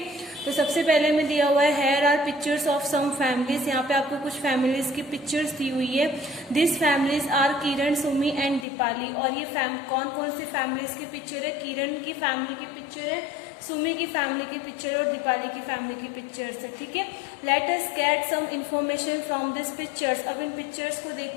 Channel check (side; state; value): right; drops out; at 8.7 s